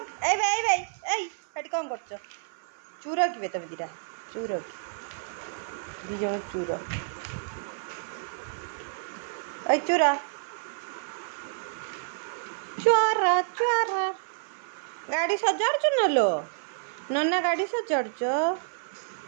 ए भाई हट कौन कर चूर कि तब दीटा चूर दी जन चूर ऐ चूर चुर चुर गाड़ी सजाड़ न लो नन्ना गाड़ी सजाड़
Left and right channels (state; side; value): silent; left; 56 dB below the other